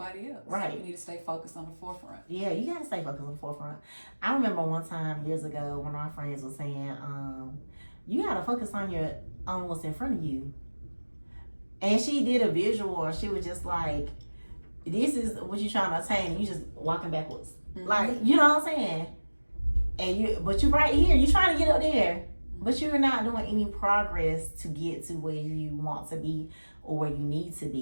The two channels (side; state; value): both; inverted; correlation -1.00